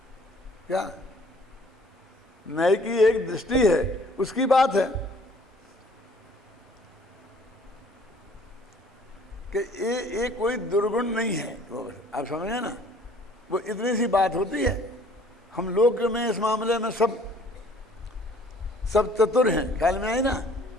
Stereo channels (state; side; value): normal; both; correlation 0.55